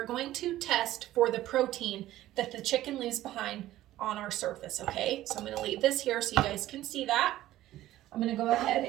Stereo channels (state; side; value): quieter; left; 14.6 dB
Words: going to test for the protein that the chicken leaves behind on our surface, okay? So I'm going to leave this here so you guys can see that. I'm going to go ahead